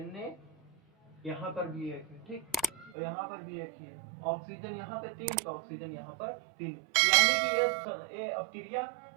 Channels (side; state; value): left; drops out; at 2.9 s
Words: यहाँ पर भी 1 है। ठीक, और यहाँ पर भी 1 ही है। ऑक्सीजन यहाँ पे 3, तो ऑक्सीजन यहाँ पर 3, यानी कि ये अभिक्रिया